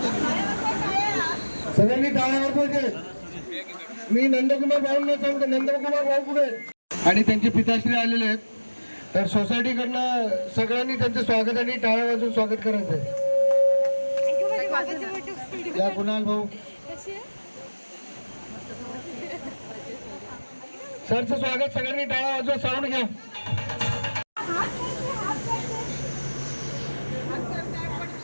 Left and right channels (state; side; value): inverted; both; correlation -1.00